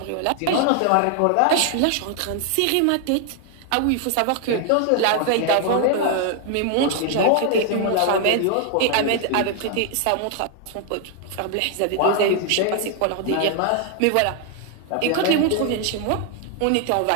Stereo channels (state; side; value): different; both; correlation 0.00